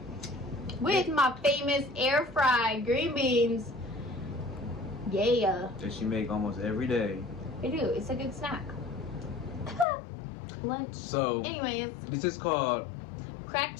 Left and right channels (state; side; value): drops out; right; at 9.9 s